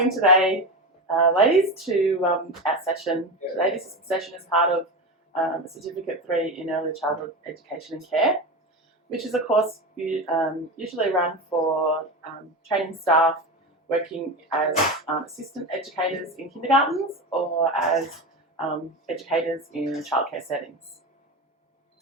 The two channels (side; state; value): both; normal; correlation 0.21